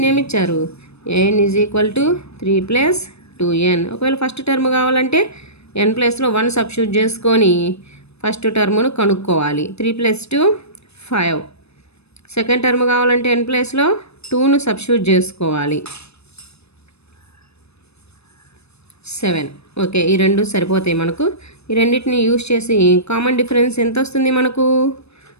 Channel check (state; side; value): late; right; 0.79 ms